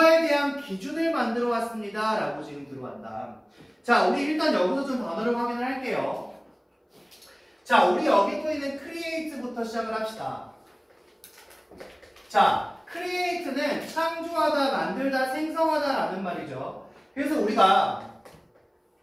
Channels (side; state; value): both; identical; correlation 1.00